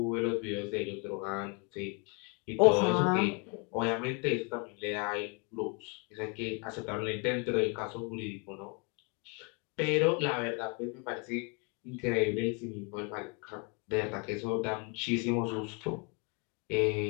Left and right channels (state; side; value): quieter; right; 33.6 dB